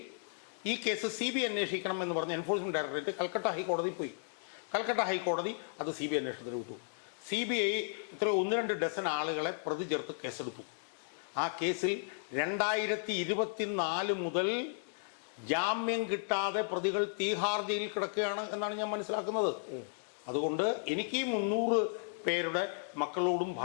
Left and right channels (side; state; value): right; silent; digital silence